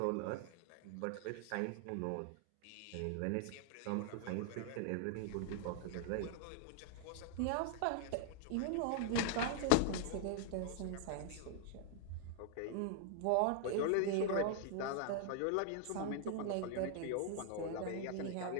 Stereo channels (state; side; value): different; both; correlation 0.00